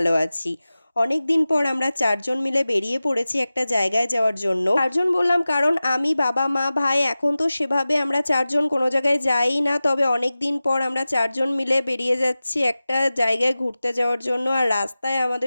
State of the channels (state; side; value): inverted; both; correlation -0.96